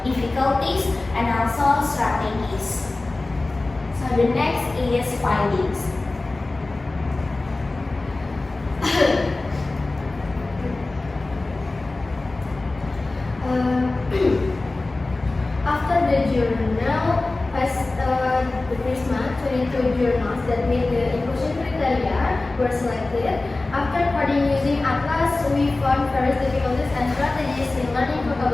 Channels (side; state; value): right; quieter; 3.1 dB